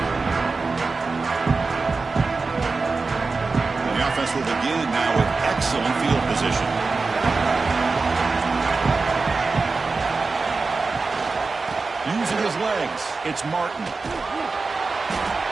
Offense will begin now with excellent field position. Using his legs, it's Martin.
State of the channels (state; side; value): quieter; left; 4.1 dB